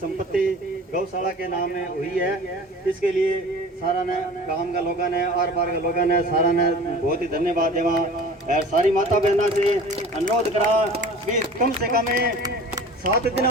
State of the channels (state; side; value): normal; both; correlation 0.42